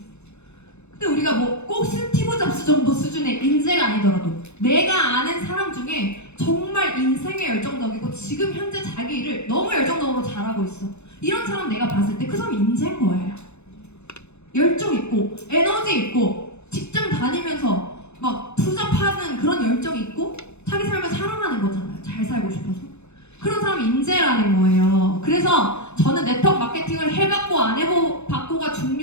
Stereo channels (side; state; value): right; late; 0.81 ms